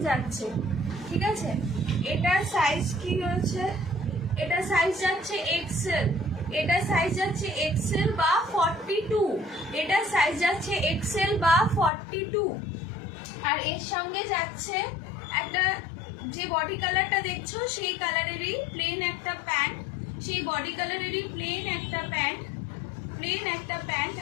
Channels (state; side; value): drops out; right; at 11.9 s